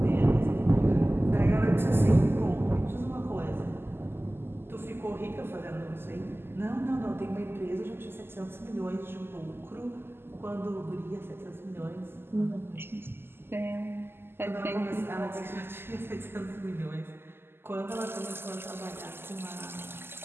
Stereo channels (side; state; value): left; late; 0.11 ms